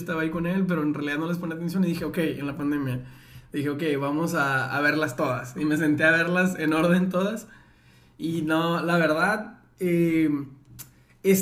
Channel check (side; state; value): both; identical; correlation 1.00